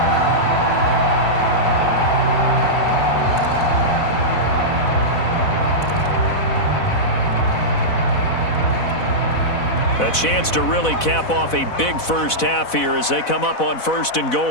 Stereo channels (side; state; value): right; late; 4.0 ms